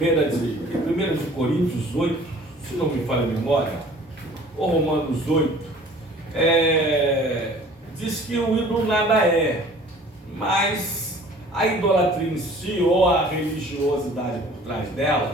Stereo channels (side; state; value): both; normal; correlation 0.50